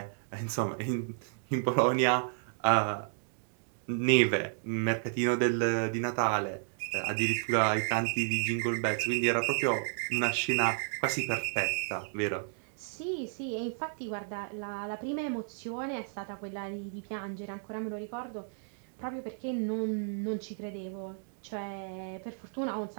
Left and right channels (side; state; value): left; silent; digital silence